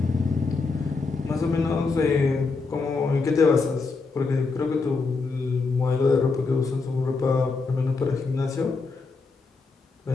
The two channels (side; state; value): right; quieter; 4.2 dB